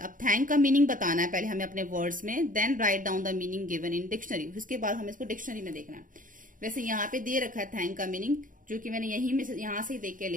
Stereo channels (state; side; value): late; left; 0.39 ms